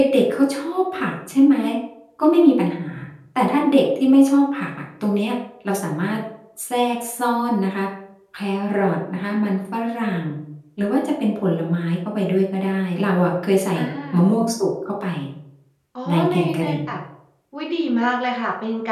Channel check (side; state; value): both; identical; correlation 1.00